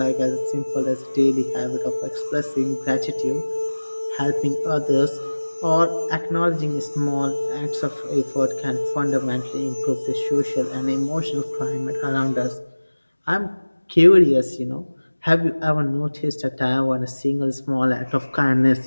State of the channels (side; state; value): both; inverted; correlation -1.00